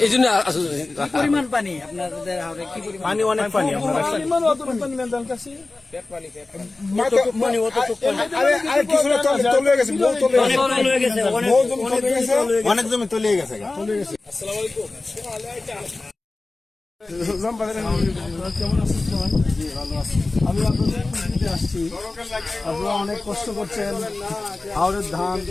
এই জন্য পরিমাণ পানি আপনাদের হাওড়ে কি পরিমাণ? পানি অনেক পানি, আপনার অনেক জমি তলিয়ে গেছে। আমি আপনাদের দিতে আসছি, আপনারা অনেক কষ্ট করছেন, হাওড়ের ধান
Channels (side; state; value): right; quieter; 3.3 dB